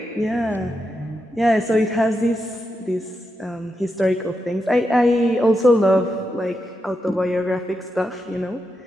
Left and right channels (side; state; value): both; normal; correlation 0.86